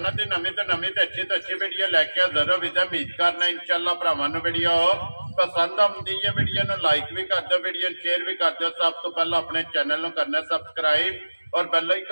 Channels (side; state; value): both; inverted; correlation -1.00